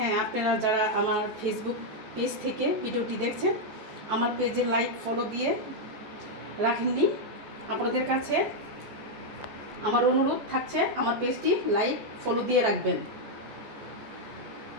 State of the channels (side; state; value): left; late; 14 ms